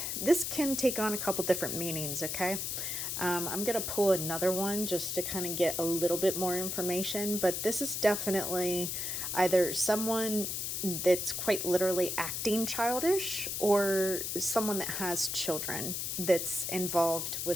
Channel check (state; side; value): noise; left; hiss, 2 dB below the sound